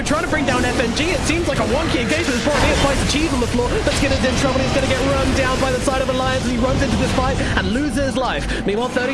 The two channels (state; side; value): identical; both; correlation 1.00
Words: trying to bring down FNG. It seems like a wonky engagement. As Boromir finds the cheese on the floor, but Skinner's in trouble. He's going to get run down by the side of Alliance as he runs into this fight and loses his life. Meanwhile,